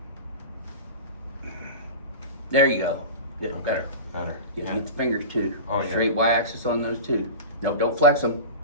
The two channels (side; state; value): both; inverted; correlation -0.30